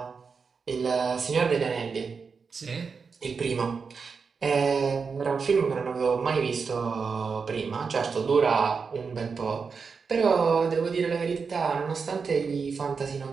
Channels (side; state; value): left; quieter; 5.3 dB